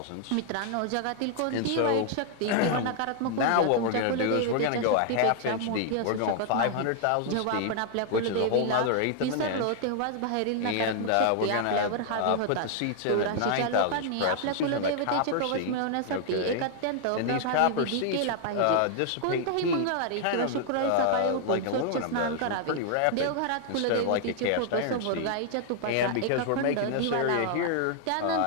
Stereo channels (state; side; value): different; both; correlation 0.00